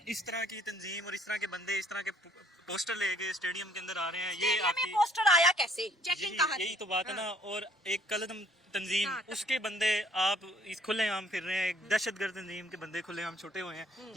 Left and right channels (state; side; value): normal; both; correlation 0.61